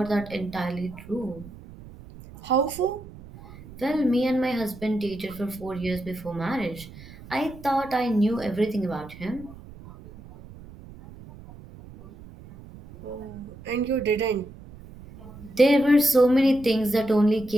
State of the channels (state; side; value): noise; right; rumble, 18 dB below the sound